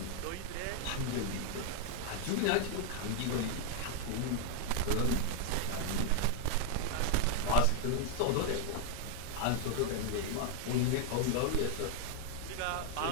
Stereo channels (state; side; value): different; both; correlation 0.00